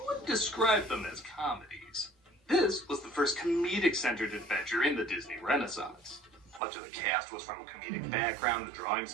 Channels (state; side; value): drops out; left; at 6.6 s